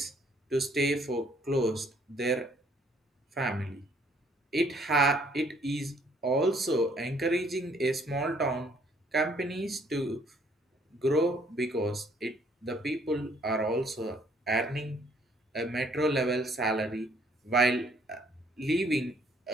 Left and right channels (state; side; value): normal; both; correlation 0.63